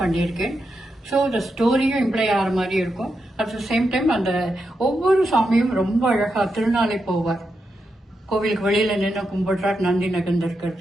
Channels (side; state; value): both; normal; correlation 0.86